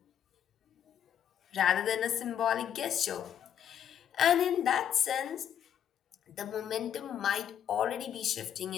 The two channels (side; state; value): right; quieter; 9.5 dB